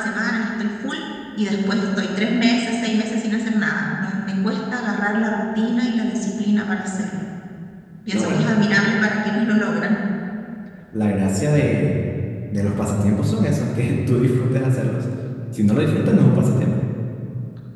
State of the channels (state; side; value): identical; both; correlation 1.00